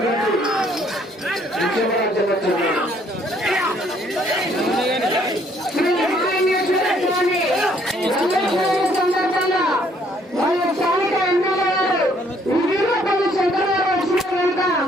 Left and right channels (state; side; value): normal; both; correlation 0.65